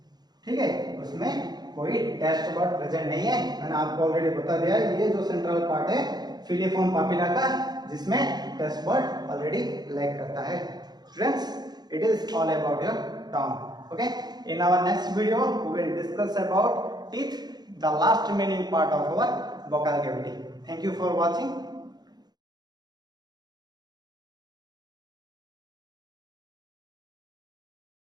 ठीक है, उसमें कोई टेस्ट बर्ड प्रेजेंट नहीं है, मैंने आपको ऑलरेडी बता दिया। ये जो सेंट्रल पार्ट है फिलिफॉर्म पापिला का, जिसमें टेस्ट बर्ड ऑलरेडी लैक करता है। Students, it is all about your tongue, okay. In our next video we will discuss about teeth, the last remaining part of our vocal cavity. Thank you for watching.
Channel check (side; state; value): left; late; 0.20 ms